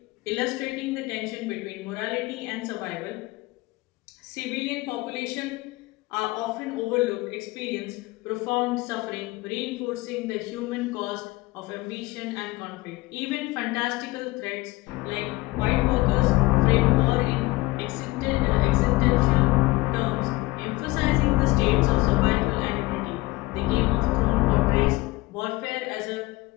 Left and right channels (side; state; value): right; quieter; 21.0 dB